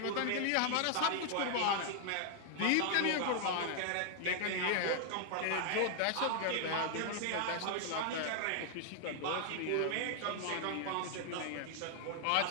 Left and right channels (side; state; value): both; different; correlation 0.00